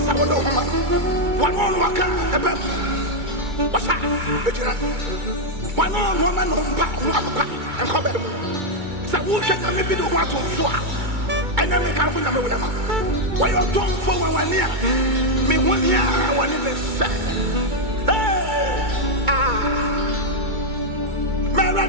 of one on Waka, a bed. What's that? One on woman on Papa and come back. So, who should I maybe do what to swap? And then make out with them. Why you don't for 1 year? Me 1 year, I want to say. Hey,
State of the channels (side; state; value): left; late; 2.2 ms